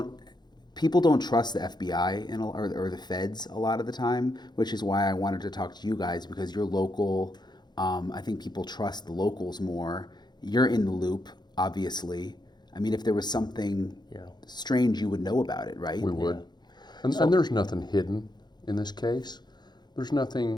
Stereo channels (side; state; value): right; late; 0.21 ms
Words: trust the FBI or the feds a lot of the time, which is why I wanted to talk to you guys, because you're local. I think people trust the locals more. You're in the loop, obviously. I mean, if there was something strange, you would know about it, right? We would. Yeah. And there's nothing hidden in this case. There's